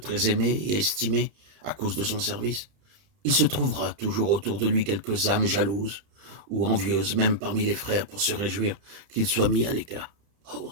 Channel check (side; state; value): left; late; 30 ms